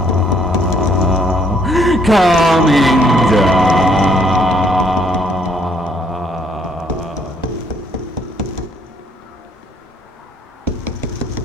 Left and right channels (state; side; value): normal; both; correlation 0.67